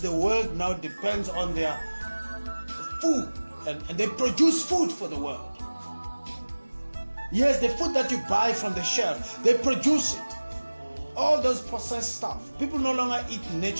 the world now depends on their food. And they produce food for the world. Yes, the food that you buy from the shelf, they produce it. All those processed stuff. People no longer eat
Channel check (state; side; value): inverted; both; correlation -1.00